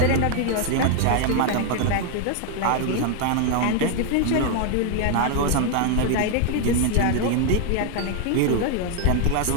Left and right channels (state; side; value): different; both; correlation 0.00